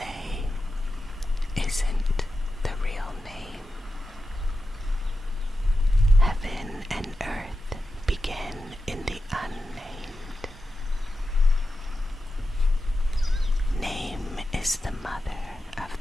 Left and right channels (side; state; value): both; normal; correlation 0.91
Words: isn't the real name. Heaven and earth begin in the unnamed. Name is the mother of